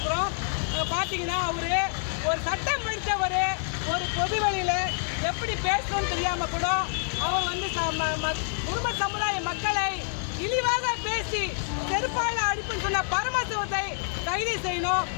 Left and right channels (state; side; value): silent; right; digital silence